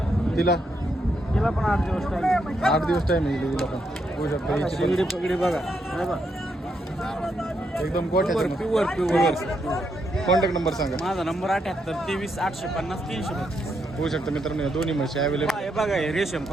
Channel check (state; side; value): normal; both; correlation 0.79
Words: तिला तिला पण 8 दिवस टाइम. 8 दिवस टाईम आहे हिला पण. बघू शकता हिची शिंगडी पगडी बघा. हे बघा. एकदम गोठ्याची. Pure pure. कॉन्टॅक्ट नंबर सांगा. माझा नंबर 78 23 850 300. बघू शकता मित्रांनो या दोन्ही म्हशी अवेलेबल. हे बघा, हे रेशम